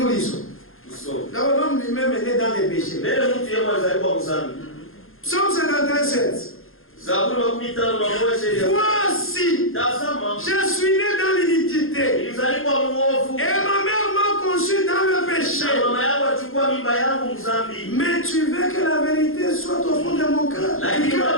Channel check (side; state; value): right; late; 0.60 ms